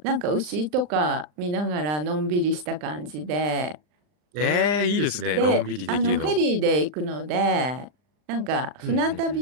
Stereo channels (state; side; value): late; left; 39 ms